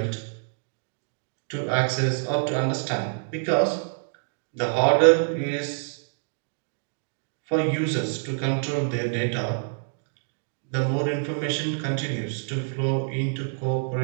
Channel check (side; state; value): left; silent; digital silence